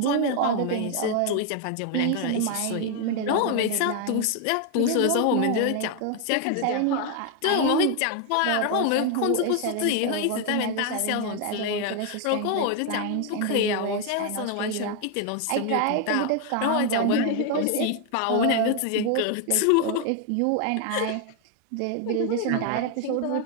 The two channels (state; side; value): different; both; correlation 0.01